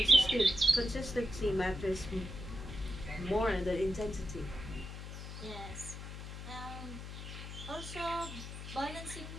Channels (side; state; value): left; noise; hum, 9 dB below the sound